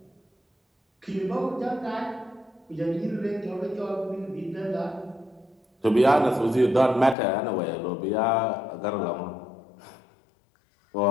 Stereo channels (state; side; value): drops out; right; at 7.2 s